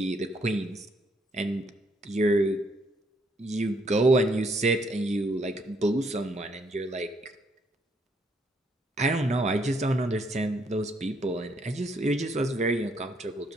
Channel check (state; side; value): normal; both; correlation 0.71